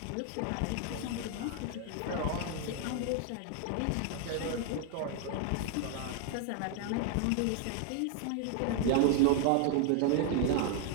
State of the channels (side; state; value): both; different; correlation 0.00